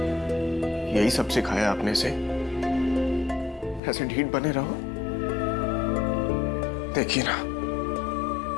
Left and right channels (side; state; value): right; drops out; at 3.8 s